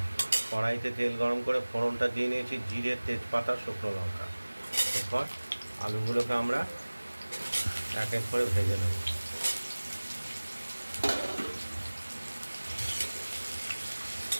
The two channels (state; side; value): inverted; both; correlation -1.00